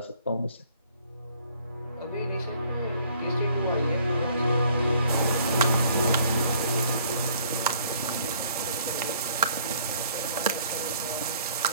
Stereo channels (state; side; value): inverted; both; correlation -0.60